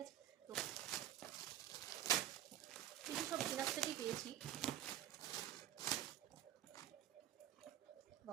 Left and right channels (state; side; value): quieter; left; 12.4 dB